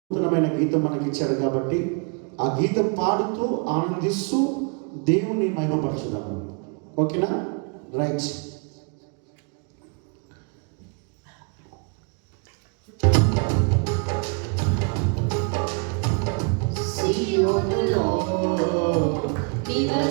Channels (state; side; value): quieter; left; 36.7 dB